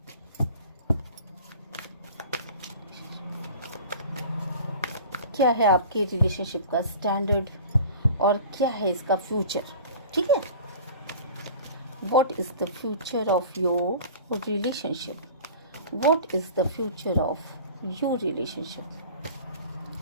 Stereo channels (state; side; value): inverted; both; correlation -0.41